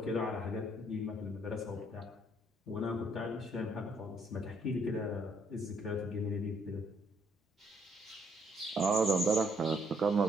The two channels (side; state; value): both; normal; correlation 0.68